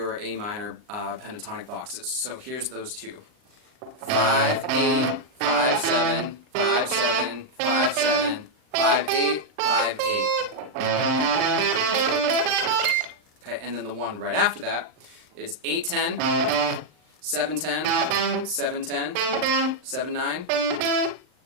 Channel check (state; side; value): late; left; 39 ms